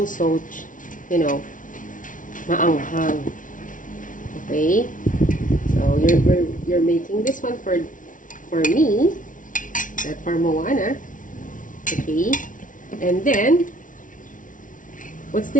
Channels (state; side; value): late; right; 0.38 ms